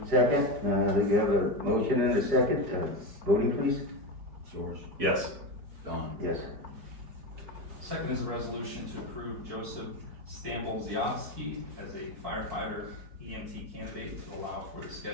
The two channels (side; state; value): left; late; 5.1 ms